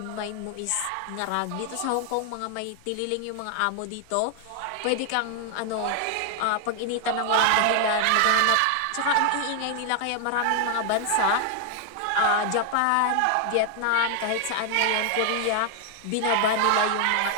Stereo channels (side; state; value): both; different; correlation 0.00